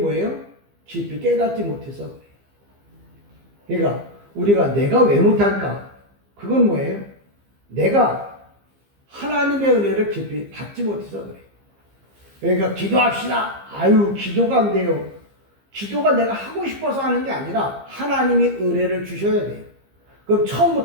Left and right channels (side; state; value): left; late; 15 ms